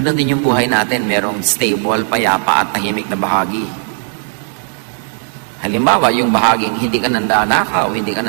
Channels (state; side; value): silent; left; 56 dB below the other